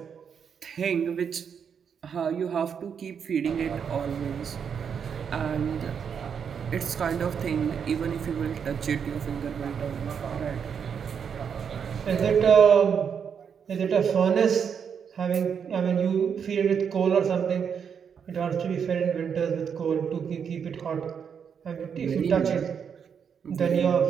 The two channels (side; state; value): left; quieter; 7.2 dB